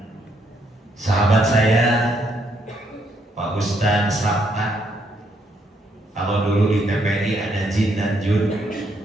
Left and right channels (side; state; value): both; normal; correlation 0.73